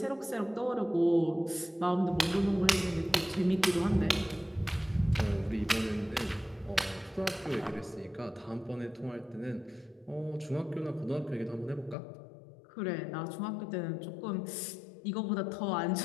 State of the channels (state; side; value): drops out; right; at 12.0 s